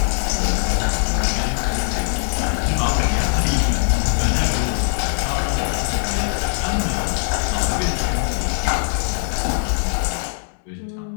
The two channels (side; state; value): right; silent; digital silence